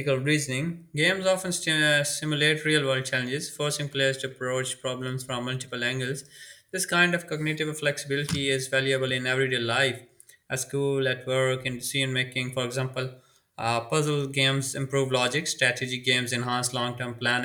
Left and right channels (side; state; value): both; identical; correlation 1.00